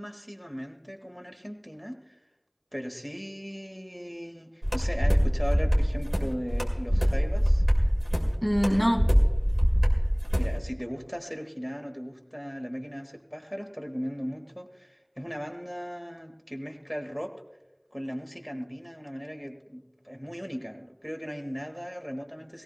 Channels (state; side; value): identical; both; correlation 1.00